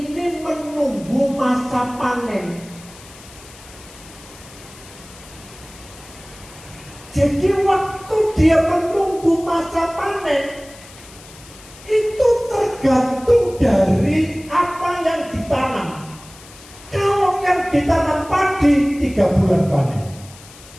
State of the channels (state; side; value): noise; left; hiss, 20 dB below the sound